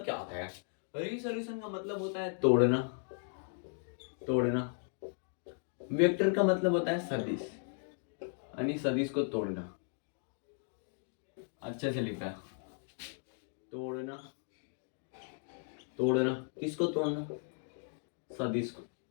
क्या होता है, रिसोल्यूशन का मतलब होता है तोड़ना, तोड़ना, वेक्टर का मतलब होता है सदिश, यानी सदिश को तोड़ना, अच्छे से लिखा है तोड़ना, तोड़ना किसको तोड़ना सदिश को,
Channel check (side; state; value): right; silent; 54 dB below the other